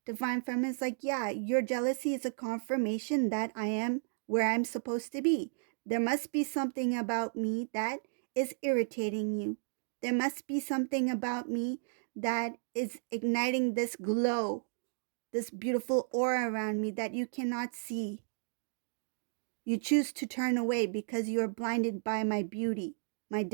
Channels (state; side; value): silent; left; digital silence